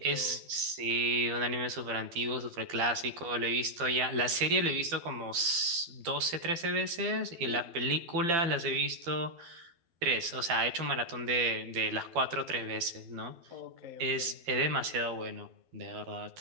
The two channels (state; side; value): late; left; 12 ms